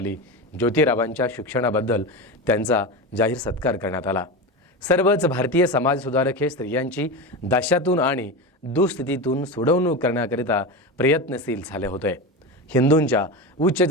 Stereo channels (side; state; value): both; normal; correlation 0.21